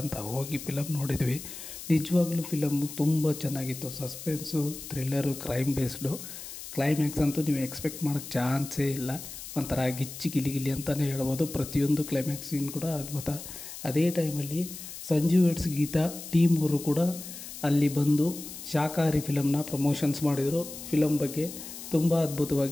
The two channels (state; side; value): noise; left; hiss, 11 dB below the sound